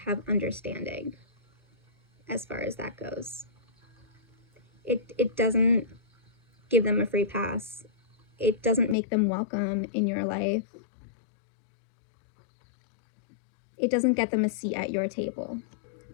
have understanding as far as that goes. It doesn't give them a free pass. It doesn't make them welcome in your life. It doesn't get them a seat at your table.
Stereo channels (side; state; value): right; drops out; at 9.0 s